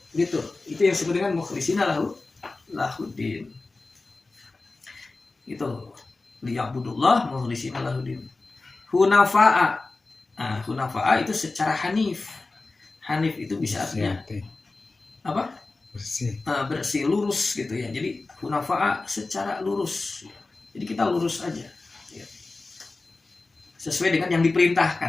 Gitu. Itu yang disebut dengan mukhlishina lahudin. Itu liya'budullah mukhlishina lahudin. Hunafa'a. Nah, hunafa'a itu secara hanif. Hanif itu bisa artinya apa? Bersih, lurus gitu ya. Jadi hunafa'a secara lurus. Jadi kita lurus aja. Ya. Sesuai dengan yang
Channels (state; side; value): quieter; right; 3.5 dB